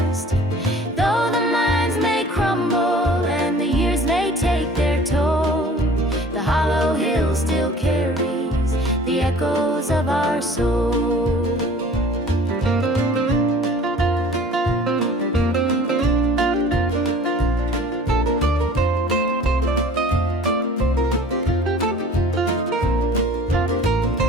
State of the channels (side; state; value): both; normal; correlation 0.47